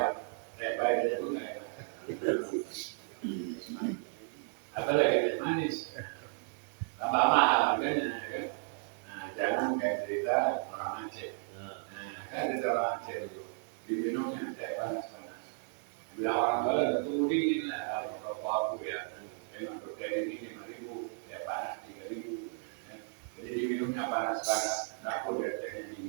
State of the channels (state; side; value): silent; left; 55 dB below the other